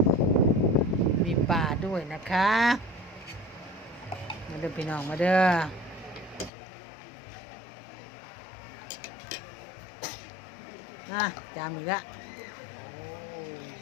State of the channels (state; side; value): drops out; right; at 6.5 s